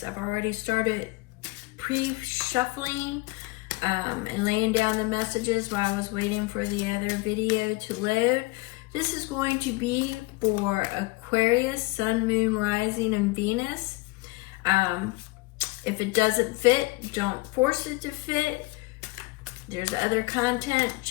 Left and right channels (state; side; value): quieter; right; 23.6 dB